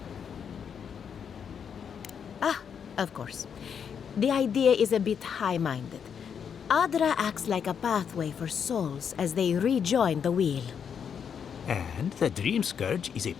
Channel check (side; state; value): right; quieter; 7.4 dB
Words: Of course. The idea is a bit high-minded. Adra acts like a pathway for souls as they rejoin the wheel. And the Dream Scourge is a